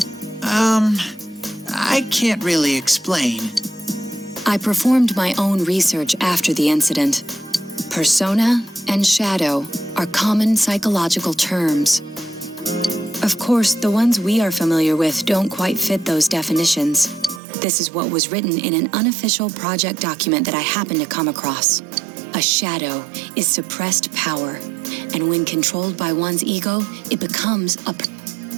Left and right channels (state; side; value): drops out; left; at 17.4 s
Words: I can't really explain. I performed my own research after the incident. Persona and shadow are common psychological terms. Of course, the ones we are familiar with don't quite fit those definitions. This is what was written in an unofficial project document that I happened to come across. A shadow is suppressed power, and when controlled by one's ego, it becomes a...